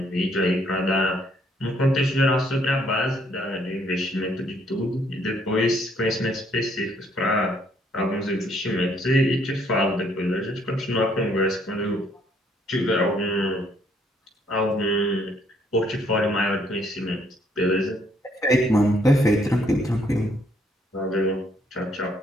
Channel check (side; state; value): both; normal; correlation 0.67